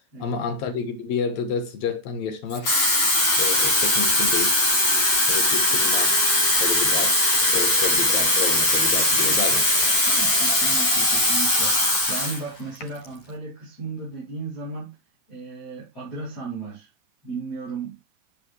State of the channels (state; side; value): late; right; 10 ms